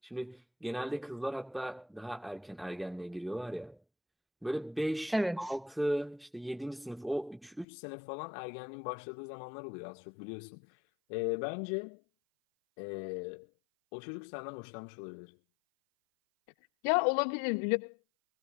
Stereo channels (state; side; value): drops out; right; at 7.7 s